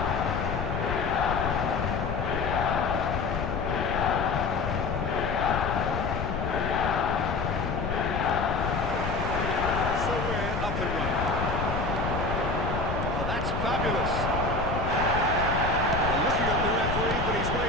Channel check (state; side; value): noise; left; rumble, 3 dB below the sound